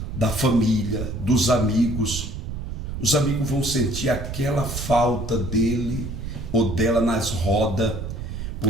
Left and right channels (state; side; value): noise; right; rumble, 6 dB below the sound